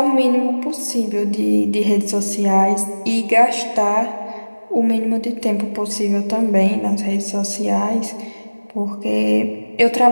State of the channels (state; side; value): inverted; both; correlation -1.00